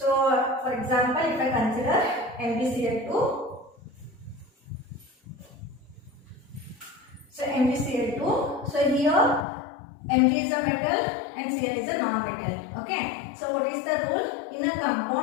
for example, if I consider MgCl2, so MgCl2, so here Mg is a metal and Cl is a non-metal. Okay. So, what is the rule? In a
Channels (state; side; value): drops out; right; at 9.5 s